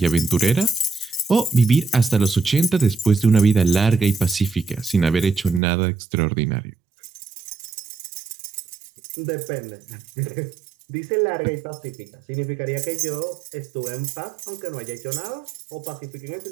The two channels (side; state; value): left; drops out; at 5.6 s